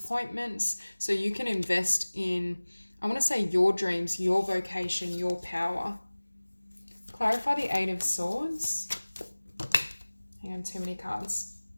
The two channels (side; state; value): both; inverted; correlation -1.00